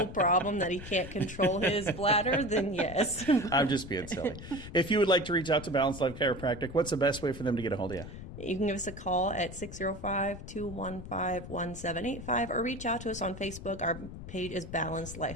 problem that he can't control his bladder, then yes. I'm just being silly. If you would like to reach out to Balanced Life Chiropractic, what's the best way for them to get a hold of you? You can give us a call at 605-215-1785 or reach out to us on Facebook. Our page is Balanced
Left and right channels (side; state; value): left; noise; rumble, 12 dB below the sound